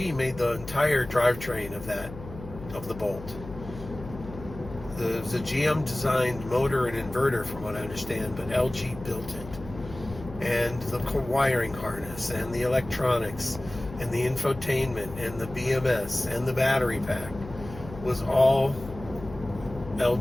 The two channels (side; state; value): left; noise; hum, 14 dB below the sound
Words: made the entire drivetrain of the Bolt. It was a GM designed motor and inverter, from what I understand, but LG built it. And the wiring harness and the electronics and the infotainment and the BMS and the battery pack was all